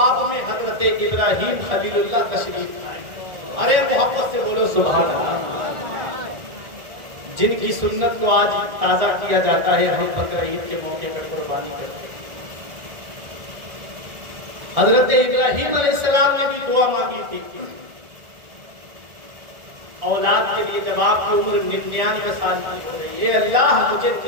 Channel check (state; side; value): late; left; 1.6 ms